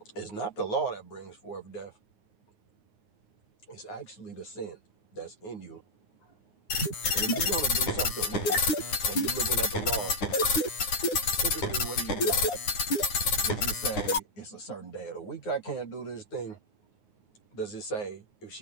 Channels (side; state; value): right; late; 9.3 ms